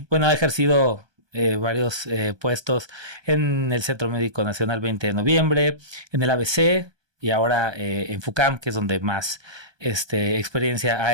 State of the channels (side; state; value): left; late; 1.2 ms